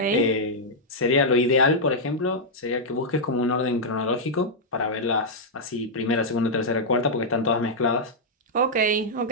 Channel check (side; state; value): both; normal; correlation -0.06